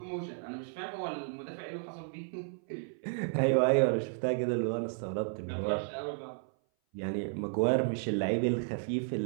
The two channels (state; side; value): silent; left; 56 dB below the other